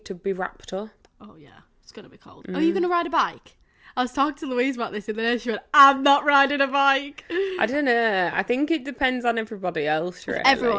to be wrapped up. Oh, yeah. It's going to be cold. Are you going to ride a bike? I was talking to Louise about this in the day. She went, I'm not riding a bike. I don't know. I think it depends on everybody else, really. If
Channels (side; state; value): both; identical; correlation 1.00